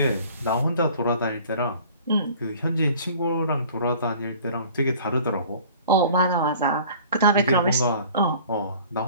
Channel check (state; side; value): inverted; both; correlation -0.48